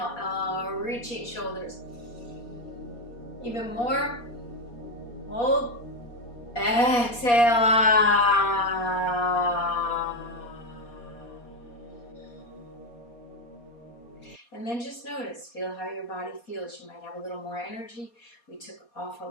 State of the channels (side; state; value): right; late; 4.2 ms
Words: reaching shoulders. Even more. Hold. Exhale. And then just notice, feel how your body feels. You might have a little more energy. We took off a